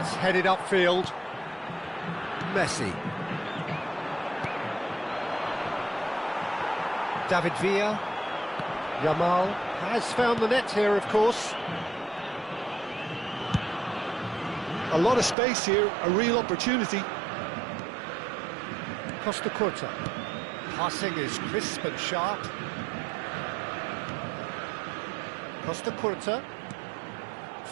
headed upfield. Messi. David Villa. Yamal has found the net here, of course. A lot of space here, a real opportunity. Costa Curta. Passing is crisp and sharp. Costa Curta.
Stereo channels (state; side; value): drops out; left; at 15.4 s